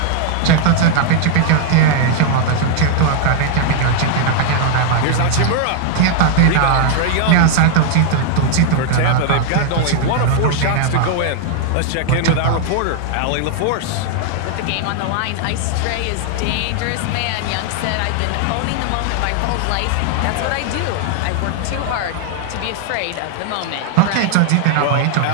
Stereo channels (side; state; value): both; different; correlation 0.00